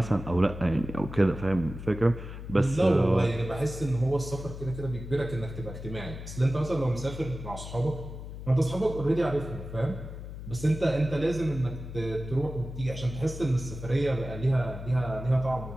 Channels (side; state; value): left; noise; hum, 10 dB below the sound